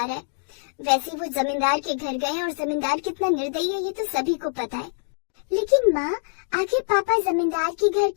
रहा है। वैसे वो जमींदार के घर गए और जमींदार कितना निर्दयी है ये तो सभी को पता है। लेकिन माँ, आखिर पापा जमींदार के घर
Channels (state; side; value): silent; right; digital silence